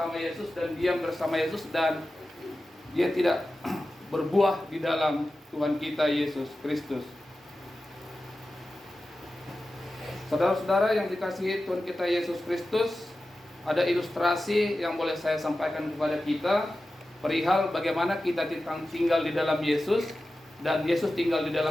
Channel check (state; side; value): normal; both; correlation 0.94